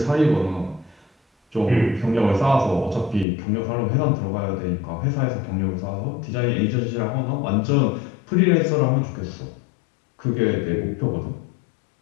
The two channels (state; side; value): drops out; right; at 3.2 s